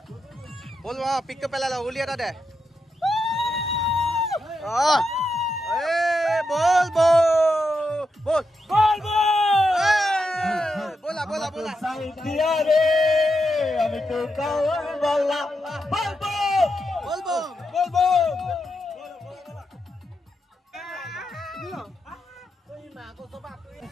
বল পিকটো পেলাই ল উলিয়াটা দে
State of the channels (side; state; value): both; normal; correlation 0.85